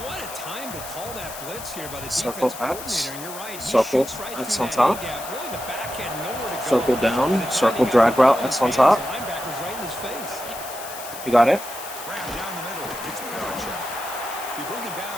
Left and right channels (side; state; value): left; noise; hiss, 12 dB below the sound